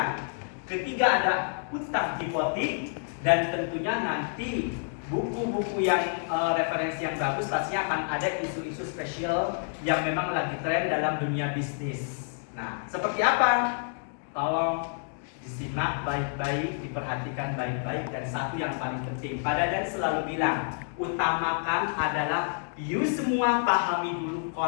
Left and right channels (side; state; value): right; silent; digital silence